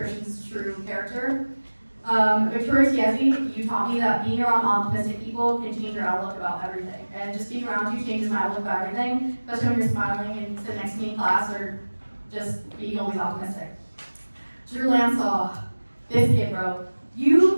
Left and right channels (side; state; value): both; inverted; correlation -1.00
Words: true character. Victoria Tiesi, you taught me that being around optimistic people can change your outlook about everything. And just being around you changes my outlook about everything, especially when you're smiling and sitting next to me in class or just being always optimistic. Drew Lansaw, this kid, bro.